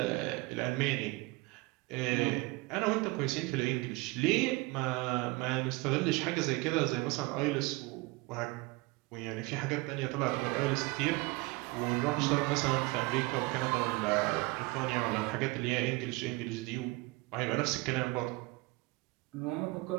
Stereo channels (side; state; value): left; quieter; 23.8 dB